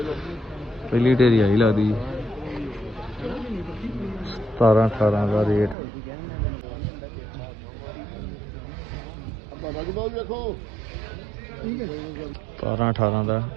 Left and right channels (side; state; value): left; drops out; at 5.8 s